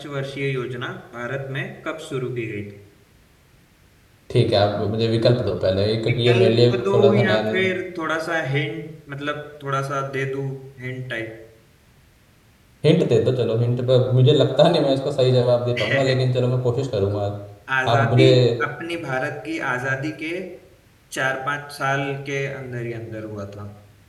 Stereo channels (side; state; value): both; identical; correlation 1.00